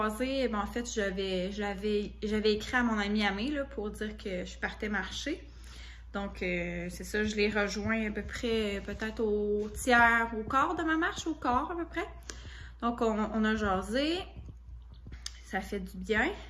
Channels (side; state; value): both; identical; correlation 1.00